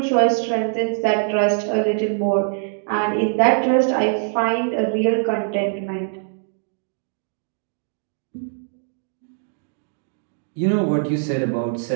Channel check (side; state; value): left; silent; digital silence